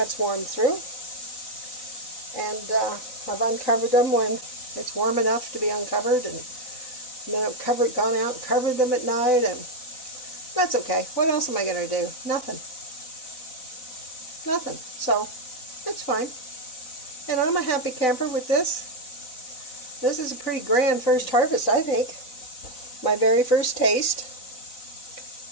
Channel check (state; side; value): late; right; 3.9 ms